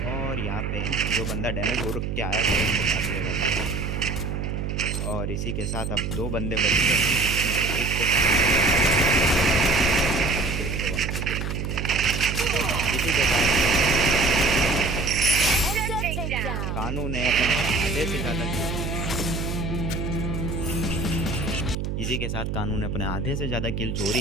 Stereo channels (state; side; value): noise; right; hum, 3 dB below the sound